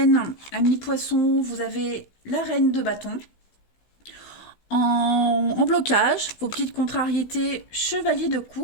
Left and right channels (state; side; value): late; right; 16 ms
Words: amis poissons, vous avez la reine de bâton. En blocage, vos petites contrariétés, chevalier de